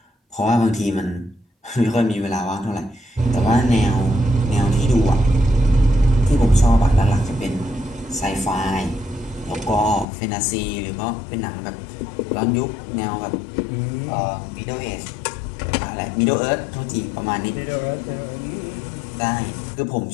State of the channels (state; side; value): drops out; right; at 10.1 s